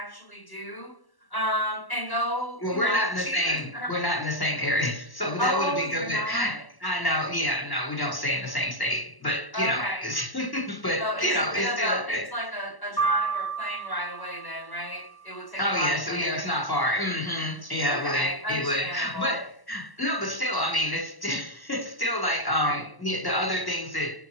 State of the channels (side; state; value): right; late; 1.1 ms